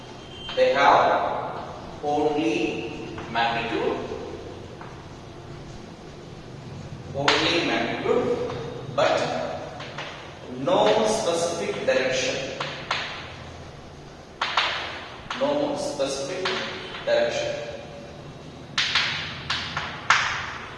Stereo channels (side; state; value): both; identical; correlation 1.00